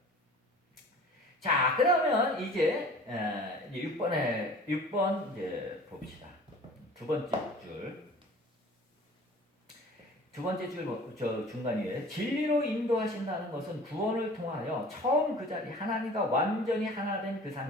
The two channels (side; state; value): both; normal; correlation 0.44